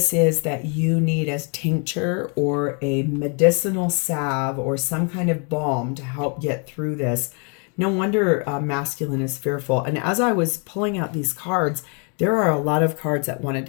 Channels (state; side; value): quieter; right; 38.0 dB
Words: is that you need as tincture or a medicinal salve or some kind of balm to help get through this. No wonder masculine is fearful. And as I was pulling out these cards, there are a lot of cards that wanted